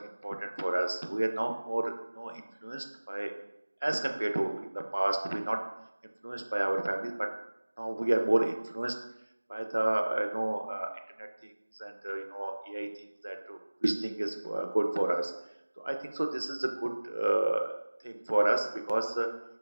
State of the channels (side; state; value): both; inverted; correlation -1.00